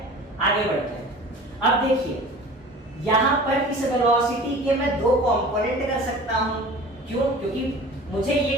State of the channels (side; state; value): both; normal; correlation 0.41